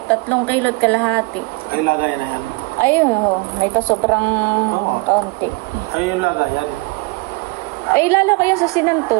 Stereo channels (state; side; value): quieter; left; 26.4 dB